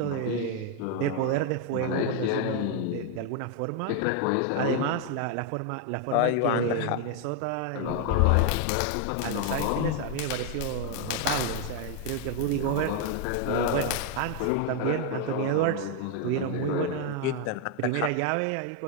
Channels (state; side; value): different; both; correlation 0.01